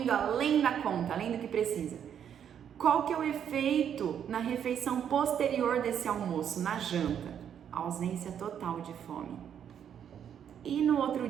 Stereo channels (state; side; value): quieter; left; 8.8 dB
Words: além da conta, além do que precisa. Qual que é o efeito na refeição posterior desse almoço, na janta? Ausência total de fome. E no outro